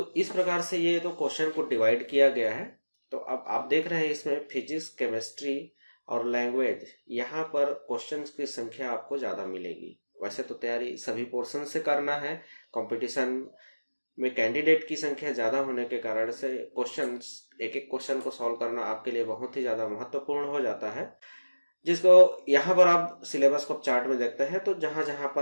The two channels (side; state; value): both; inverted; correlation -1.00